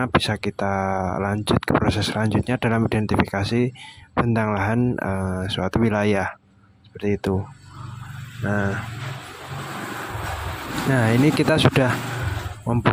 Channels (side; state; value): both; identical; correlation 1.00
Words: bisa kita lanjut ke proses selanjutnya dalam identifikasi bentang lahan suatu wilayah, seperti itu. Nah, ini kita sudah